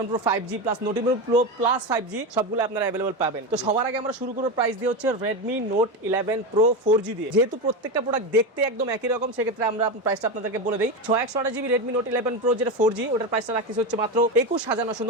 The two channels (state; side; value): normal; both; correlation 0.17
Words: pro 5G plus note 11 pro plus 5G সবগুলো আপনারা অ্যাভেলেবল পাবেন। তো সবার আগে আমরা শুরু করব প্রাইস দিয়ে হচ্ছে রেডমি নোট 11 প্রো 4G দিয়ে। যেহেতু প্রত্যেকটা প্রোডাক্ট দেখতে একদম একই রকম, সেক্ষেত্রে আমরা প্রাইসটা আপনাদেরকে বলে দিই। 628GB রেডমি নোট 11 প্রো যেটা 4G, ওটার প্রাইসটা রাখতেছে হচ্ছে মাত্র